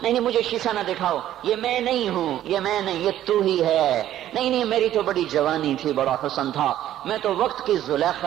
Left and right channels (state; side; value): quieter; left; 12.4 dB